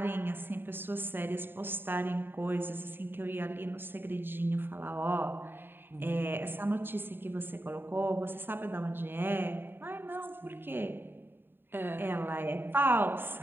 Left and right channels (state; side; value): late; left; 0.10 ms